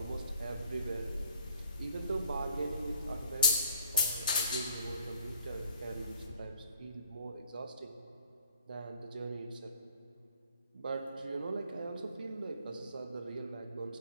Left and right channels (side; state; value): both; inverted; correlation -0.57